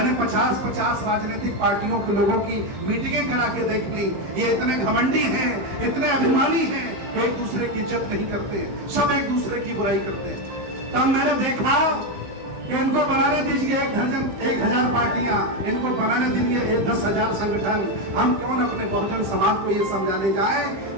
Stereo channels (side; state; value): left; late; 16 ms